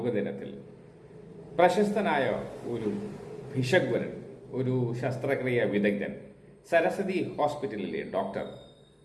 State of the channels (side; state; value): both; identical; correlation 1.00